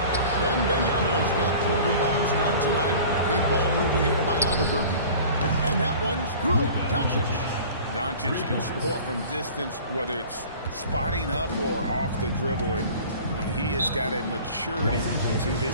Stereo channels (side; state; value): both; inverted; correlation -0.43